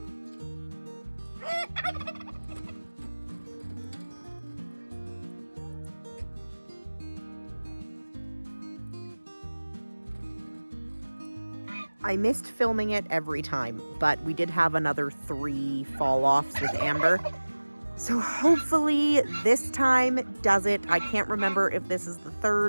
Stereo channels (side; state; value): both; inverted; correlation -1.00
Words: I missed filming it every time, but we did have another 3 fall-offs with Amber. So hopefully this time does it. I can't remember if this is the